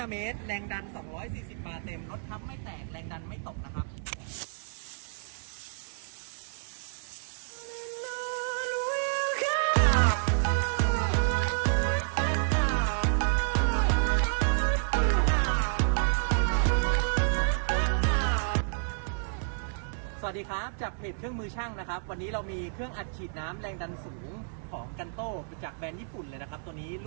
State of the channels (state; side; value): silent; left; digital silence